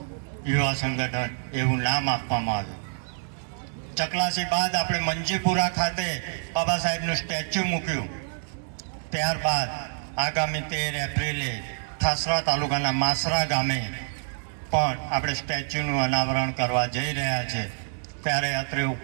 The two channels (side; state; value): left; silent; 60 dB below the other